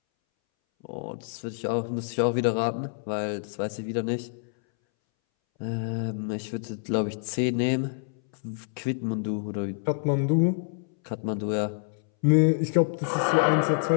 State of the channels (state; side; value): silent; right; 60 dB below the other